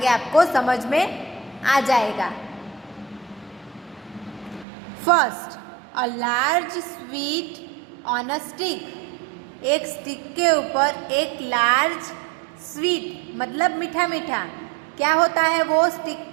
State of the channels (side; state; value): left; drops out; at 4.7 s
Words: आपको समझ में आ जाएगा। First, a large sweet on a stick. एक स्टिक के ऊपर एक लार्ज स्वीट मतलब मीठा मीठा, क्या होता है वो स्टिक